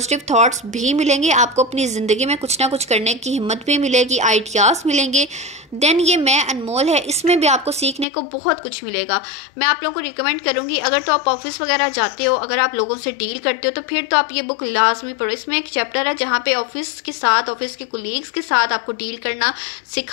थॉट्स भी मिलेंगे, आपको अपनी ज़िंदगी में कुछ ना कुछ करने की हिम्मत भी मिलेगी, आइडियाज़ मिलेंगे। देन ये मैं अनमोल है, इसमें भी आपको सीखने को बहुत कुछ मिलेगा। मैं आप लोगों को रिकमेंड करूंगी, अगर तो आप ऑफिस वगैरह जाते हो, अगर आप लोगों से डील करते हो तो फिर तो आप ये बुक लाजमी पढ़ो। इसमें एक चैप्टर है जहाँ पे ऑफिस के साथ, ऑफिस के कोलीग्स के साथ आपको डील करना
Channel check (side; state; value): right; drops out; at 8.1 s